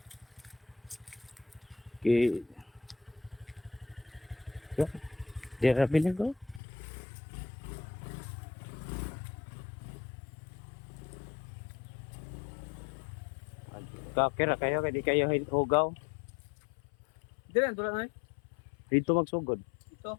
Okay. Dira bilhin ko. Kira kayo kay di kayo hugaw. Dire tulad na. Dito magsugod. Ito.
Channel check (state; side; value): drops out; right; at 6.6 s